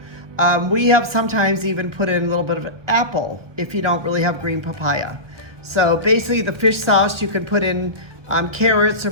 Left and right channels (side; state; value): left; late; 1.4 ms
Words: We have sometimes even put in a little bit of an apple if you don't really have green papaya. So basically the fish sauce, you can put in carrots or